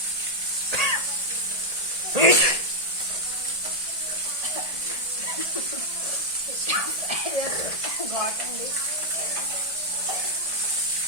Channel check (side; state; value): left; late; 1.7 ms